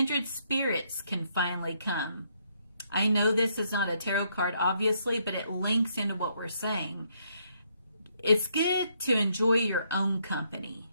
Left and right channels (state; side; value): inverted; both; correlation -0.73